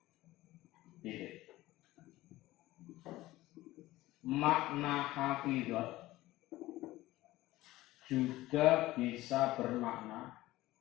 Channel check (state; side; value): quieter; right; 17.3 dB